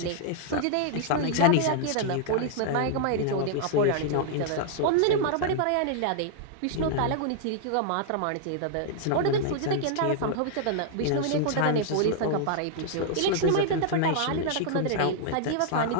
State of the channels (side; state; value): both; different; correlation -0.01